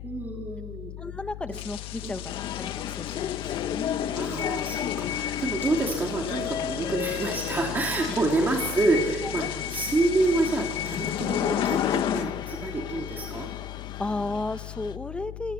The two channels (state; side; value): noise; left; hum, 11 dB below the sound